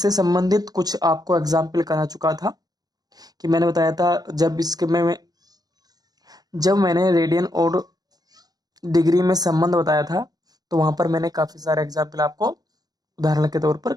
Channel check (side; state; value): left; late; 0.19 ms